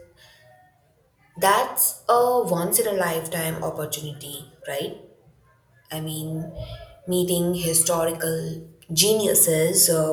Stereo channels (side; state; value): both; identical; correlation 1.00